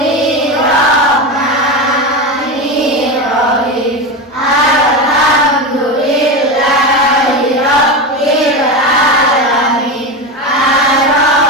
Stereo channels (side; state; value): both; normal; correlation 0.19